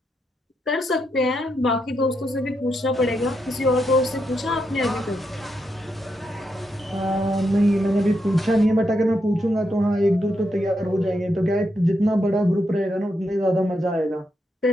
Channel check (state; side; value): normal; both; correlation 0.82